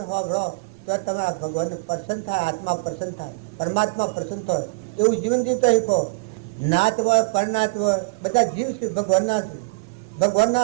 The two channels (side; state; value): left; quieter; 28.7 dB